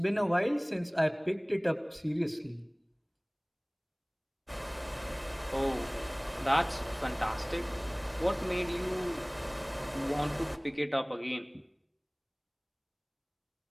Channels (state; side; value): identical; both; correlation 1.00